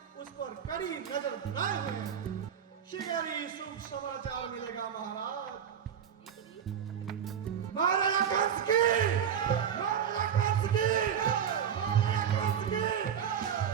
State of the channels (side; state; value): left; quieter; 8.4 dB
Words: उस पर कड़ी नजर बनाए हुए हैं। शीघ्र ही शुभ समाचार मिलेगा महाराज। मारो या कंस की, मारो या कंस की, मारो या कंस की।